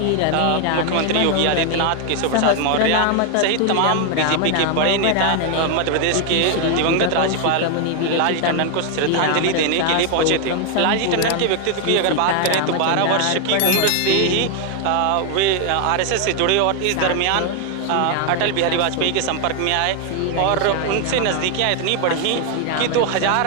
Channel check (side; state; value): both; different; correlation 0.00